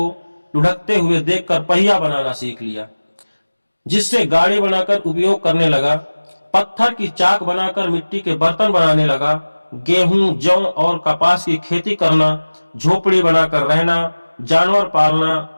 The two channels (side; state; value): both; inverted; correlation -1.00